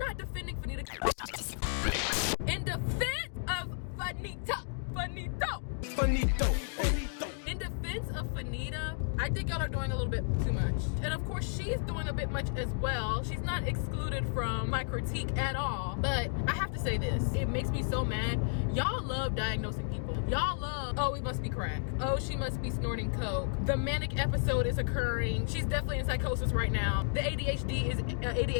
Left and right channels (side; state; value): right; silent; digital silence